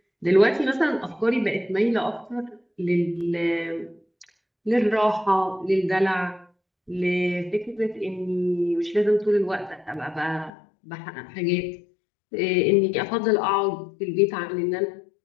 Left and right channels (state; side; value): drops out; right; at 10.5 s